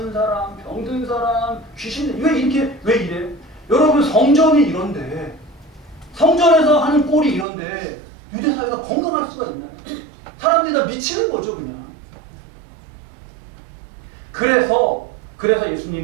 사람, 병든 사람, 귀신, 왜 이래요? 여러분 성전이 이런데, 성전에서 하는 꼴이 이런데, 유대 사회가 건강할 수가 있나요? 사람들이 다 미치는 거죠, 그냥. 그래서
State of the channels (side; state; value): left; drops out; at 7.5 s